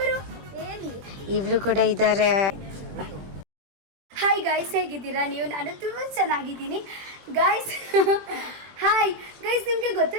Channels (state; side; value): late; left; 21 ms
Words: ಇವರು ಕೂಡ ಇದ್ದಾರೆ. ಹಾಯ್ ಗೈಸ್, ಹೇಗಿದ್ದೀರಾ ನೀವು? ನಾನು ತುಂಬಾ ಚೆನ್ನಾಗಿದ್ದೀನಿ ಗೈಸ್. ಹಾಯ್ ಗೈಸ್, ನಿಮ್ಗೆ